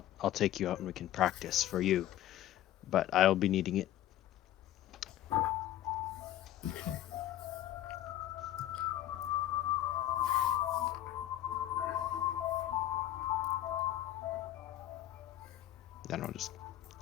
take you out and we can practice for you. But I'll be needing it. Then I'll just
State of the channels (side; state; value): right; quieter; 13.0 dB